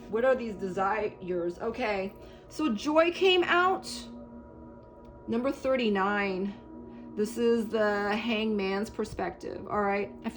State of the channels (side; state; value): both; identical; correlation 1.00